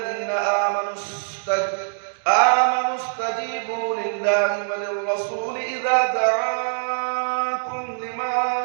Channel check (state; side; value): silent; left; digital silence